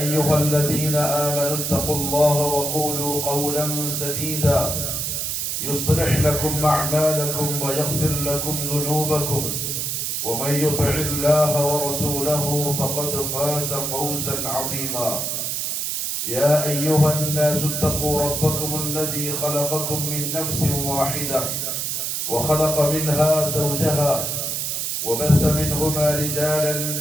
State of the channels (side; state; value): right; noise; hiss, 1 dB below the sound